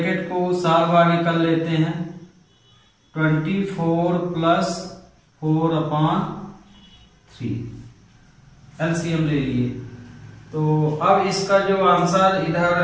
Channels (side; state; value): both; identical; correlation 1.00